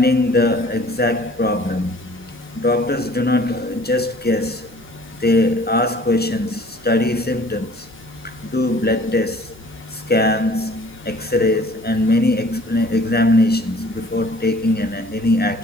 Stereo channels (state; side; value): normal; both; correlation 0.52